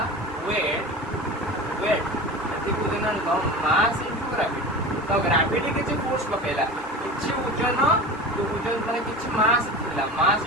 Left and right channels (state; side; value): normal; both; correlation 0.31